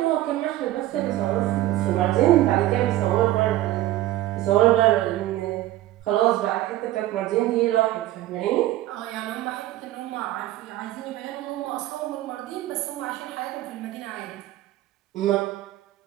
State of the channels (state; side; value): quieter; left; 15.3 dB